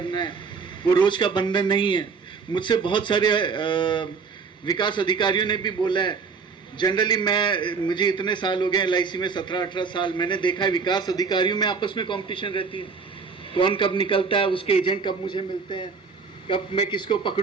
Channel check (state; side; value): quieter; left; 5.2 dB